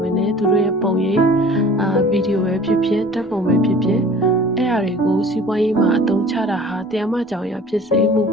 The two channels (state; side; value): normal; both; correlation 0.47